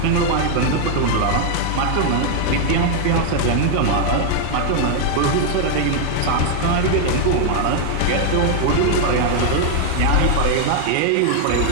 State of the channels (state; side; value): different; both; correlation 0.00